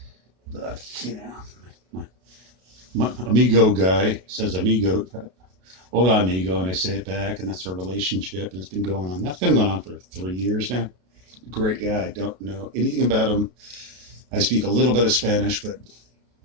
but my amigo guy says amigo, hola amigo, and I say it back, and that's our relationship, and it's been going on. That's been going on for 3 years now. Great guy. Don't know anything about him. I speak a little bit of Spanish, but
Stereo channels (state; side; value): late; left; 33 ms